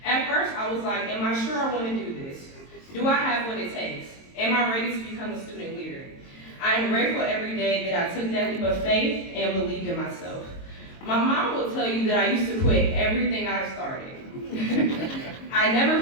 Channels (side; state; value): right; late; 22 ms